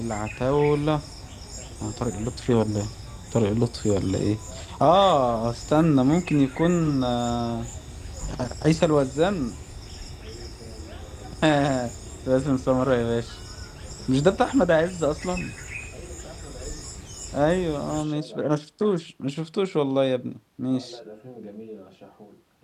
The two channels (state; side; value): identical; both; correlation 1.00